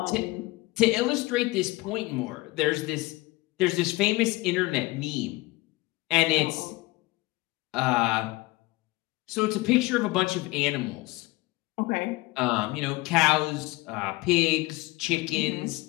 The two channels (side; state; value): right; quieter; 21.2 dB